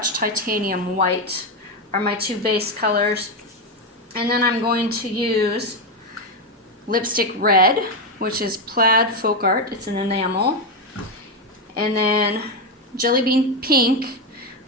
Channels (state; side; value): normal; both; correlation 0.09